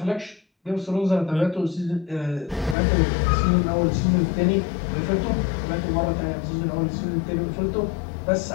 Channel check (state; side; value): drops out; right; at 2.8 s